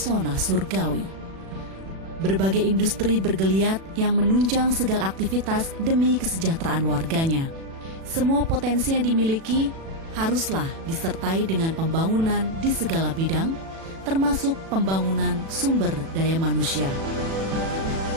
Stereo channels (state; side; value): late; left; 36 ms